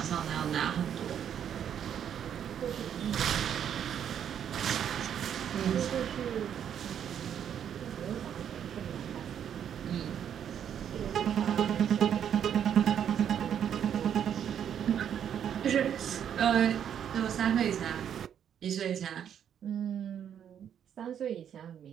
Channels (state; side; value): quieter; left; 9.0 dB